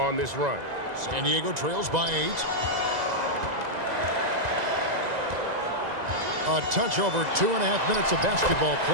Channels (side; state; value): left; late; 2.0 ms